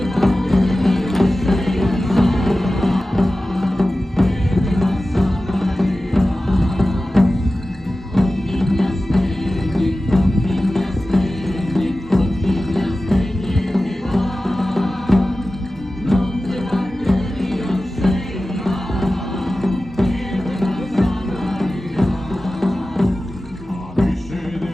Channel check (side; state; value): both; normal; correlation 0.95